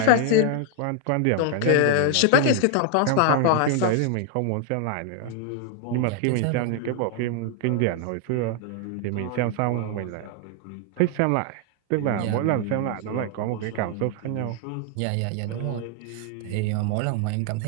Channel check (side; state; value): both; different; correlation 0.00